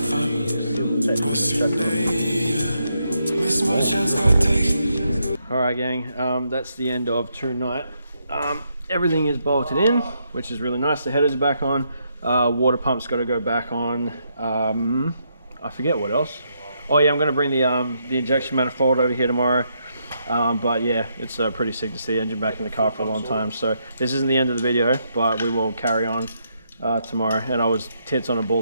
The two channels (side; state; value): both; inverted; correlation -0.78